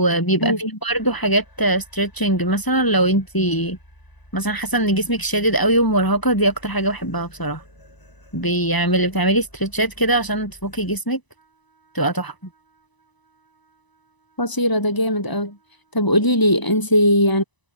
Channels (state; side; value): late; right; 1.0 ms